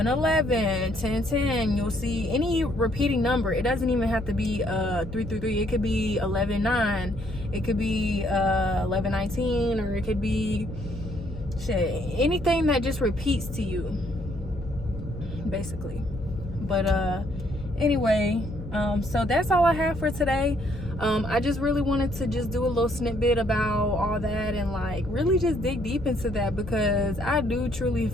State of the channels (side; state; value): left; noise; hum, 12 dB below the sound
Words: 1010. You'll see any repeating number. It doesn't even have to be 333. It could be 119, it could be 1119, or it could be anything that just repeats to you, basically. But anyway, so that's all I have for today. I just really wanted to just do a little snippet about all that, and like really just dig deep into that, because I do truly